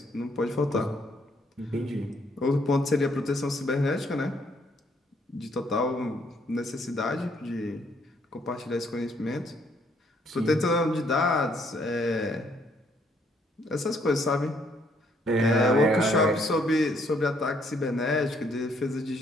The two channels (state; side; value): normal; both; correlation 0.68